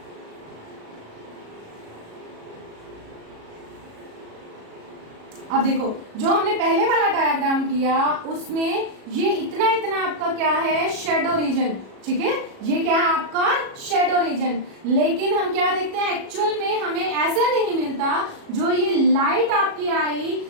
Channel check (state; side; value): late; left; 37 ms